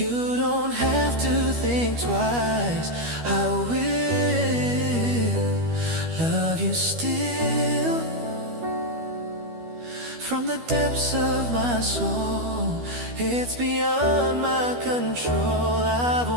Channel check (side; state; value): left; late; 12 ms